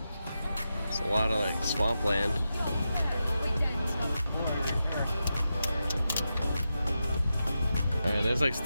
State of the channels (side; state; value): both; inverted; correlation -0.89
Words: It's a lot of like swampland. Alright, there's like